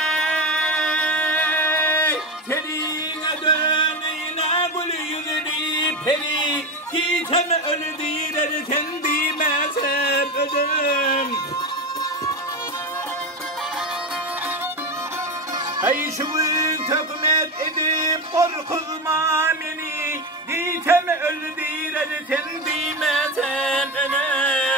tenine döneyine gül yüzünü peri gitsem ölü diler sen bilmezsem ölüm. Hey şuvun tökmet edip korkutma beni gitsem ölü diler sen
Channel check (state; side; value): normal; both; correlation 0.18